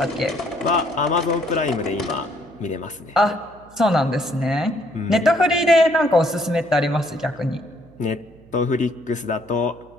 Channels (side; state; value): right; noise; hum, 26 dB below the sound